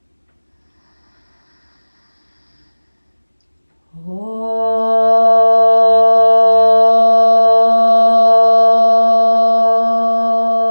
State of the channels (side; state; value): both; inverted; correlation -1.00